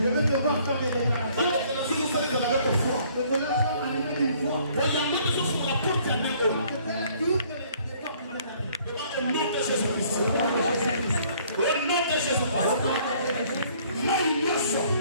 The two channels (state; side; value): inverted; both; correlation -0.60